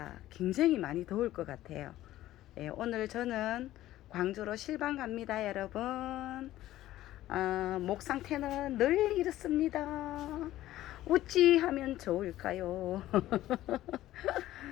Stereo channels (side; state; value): right; quieter; 14.6 dB